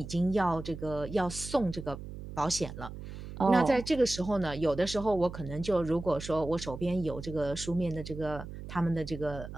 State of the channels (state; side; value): noise; right; hum, 11 dB below the sound